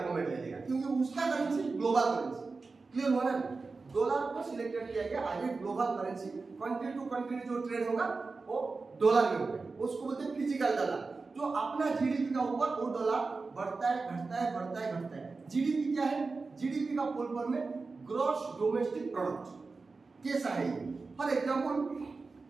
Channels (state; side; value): quieter; left; 4.1 dB